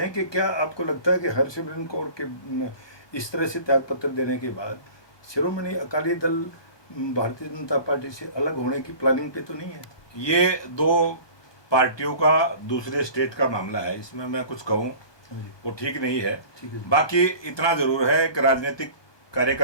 कि क्या आपको लगता है कि हरसिमरत कौर के इस तरह से त्याग पत्र देने के बाद शिरोमणि अकाली दल भारतीय जनता पार्टी से अलग होने की प्लानिंग पे तो नहीं है? ये दो पार्टियों का दूसरे स्टेट का मामला है, इसमें मैं कुछ कहूँ वो ठीक नहीं है। बाकी इतना जरूर है कि राजनीतिक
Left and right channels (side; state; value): right; late; 1.2 ms